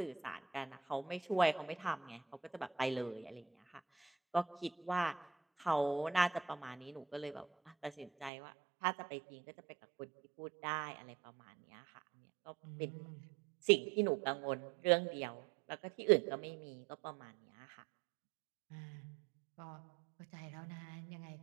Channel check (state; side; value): drops out; left; at 8.3 s